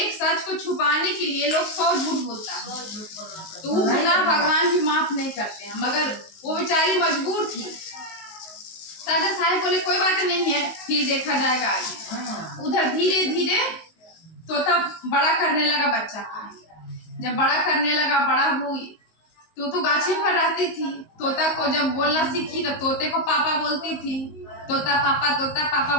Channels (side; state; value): right; late; 19 ms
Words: सच को छुपाने के लिए लोग 100 झूठ बोलता है, तो वो गुनाह भगवान भी माफ नहीं करते हैं, मगर वो बेचारी मजबूर थी। राजा साहब बोले कोई बात नहीं है, फिर देखा जाएगा आगे। उधर धीरे धीरे तोता बड़ा करने लगा बच्चा का। जब बड़ा करने लगा, बड़ा हुई तो गाछे पर रहती थी। तोता को जब बोलना सीखी तो तोते को पापा बोलती थी, तोता पापा